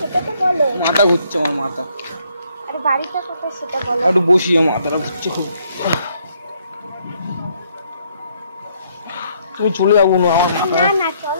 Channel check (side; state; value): both; inverted; correlation -0.69